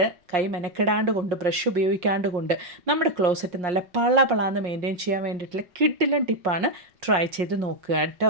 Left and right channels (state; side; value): late; left; 5.6 ms